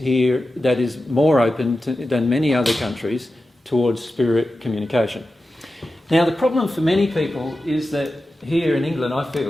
that is more open than many other countries towards spirit communication. Now, the problem for many people is that here in England, I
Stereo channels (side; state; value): both; normal; correlation 0.93